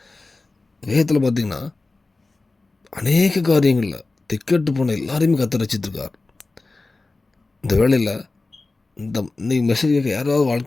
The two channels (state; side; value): quieter; right; 3.4 dB